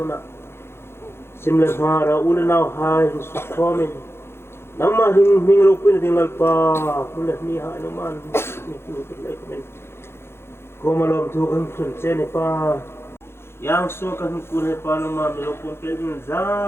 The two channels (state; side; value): late; right; 0.12 ms